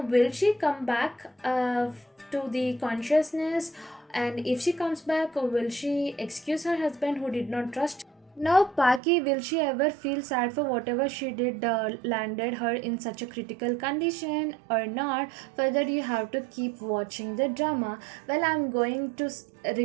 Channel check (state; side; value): drops out; left; at 9.0 s